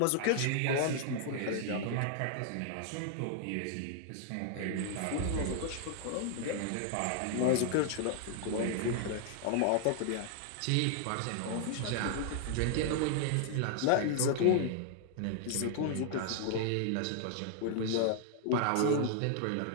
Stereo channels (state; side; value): different; both; correlation 0.00